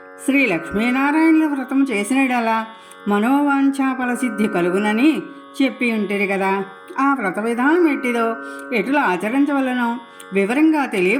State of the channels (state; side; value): identical; both; correlation 1.00